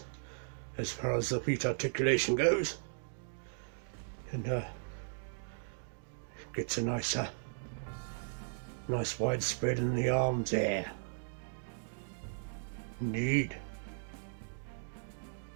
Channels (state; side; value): silent; left; digital silence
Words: as far as the feet articulation goes. And gets a nice wide spread in the arms there. Indeed.